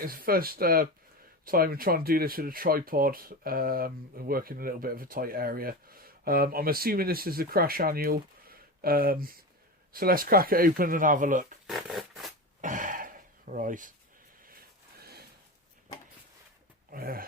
the first time I'm trying to do this with a tripod and work in a little bit of a tight area. I'm assuming this is the Crash Annual. So let's crack it open and have a look. Right.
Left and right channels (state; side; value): normal; both; correlation 0.24